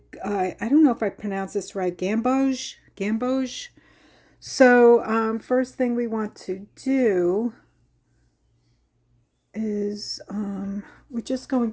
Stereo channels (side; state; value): both; identical; correlation 1.00